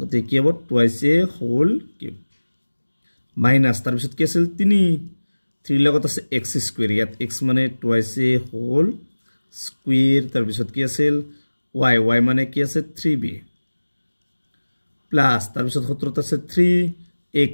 কি হ'ব twice a whole cube minus তাৰ পিছত কি আছিল 3 লগত আছে x square ইয়াত x মানে twice a whole square তাৰ পিছত কি আছিল y মানে কি আছে 3b প্লাস তাৰ পিছত সূত্ৰত আছে 3x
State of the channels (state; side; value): inverted; both; correlation -1.00